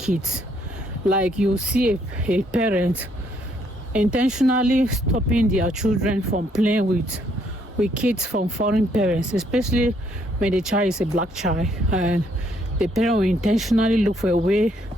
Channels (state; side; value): normal; both; correlation 0.69